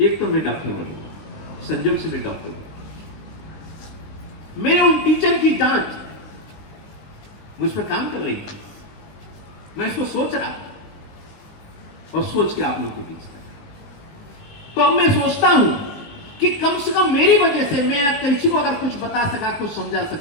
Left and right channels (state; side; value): late; right; 19 ms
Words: एक तो मैं डॉक्टर बनूंगा, संजोग से मैं डॉक्टर बनूंगा। मेरे उन टीचर की डांट मुझ पर काम कर रही थी, मैं इसको सोच रहा और सोच के आप लोगों के बीच था। तो अब मैं सोचता हूं कि कम से कम मेरी वजह से मैं किसी को अगर कुछ बता सका, कुछ समझा